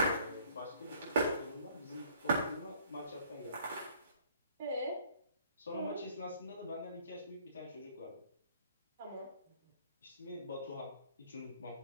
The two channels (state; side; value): inverted; both; correlation -0.59